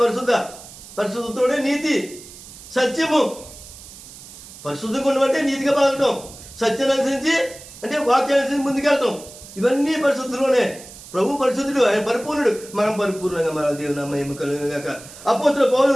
పరిశుద్ధ. పరిశుద్ధతోనే నీతి, సత్యము. పరిశుద్ధంగా ఉండమంటే నీతిగా పలకటం, సత్యాన్ని అనుసరించి అంటే వాక్యాన్ని అనుసరించి ముందుకెళ్తాం. ఇవన్నీ పరిశుద్ధులోనే. ప్రభు పరిశుద్ధుడు, ఆయన పరిపూర్ణుడు, మనం పరిపూర్ణంగా మన దేవుని మహిమ కలుగును గాక. అపోస్తలుడైన పౌలు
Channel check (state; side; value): noise; right; hiss, 17 dB below the sound